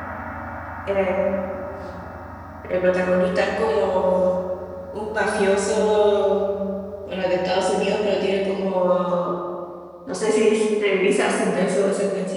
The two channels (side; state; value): both; identical; correlation 1.00